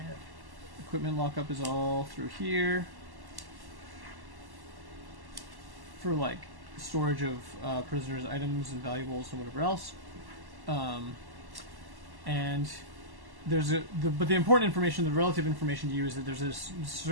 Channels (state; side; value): late; left; 1.1 ms